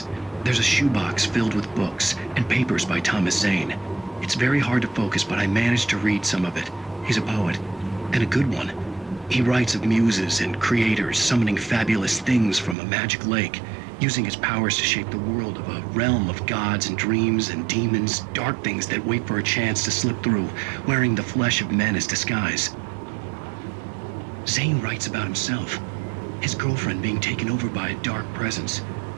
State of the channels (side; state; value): left; drops out; at 12.8 s